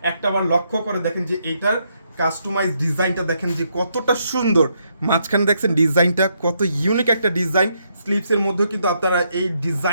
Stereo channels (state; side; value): inverted; both; correlation -0.76